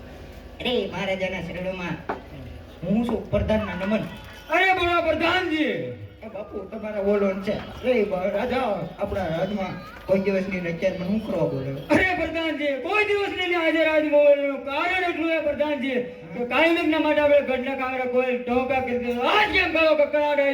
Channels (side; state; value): both; identical; correlation 1.00